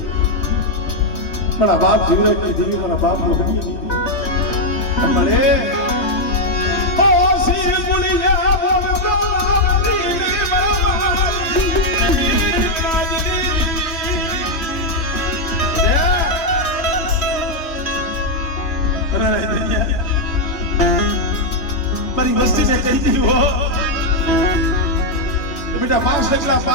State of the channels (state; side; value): late; right; 3.2 ms